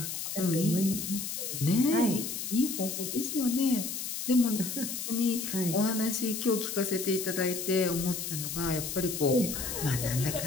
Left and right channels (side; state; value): left; noise; hiss, 5 dB below the sound